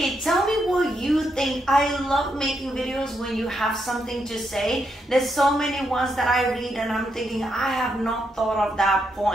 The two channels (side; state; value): both; normal; correlation 0.80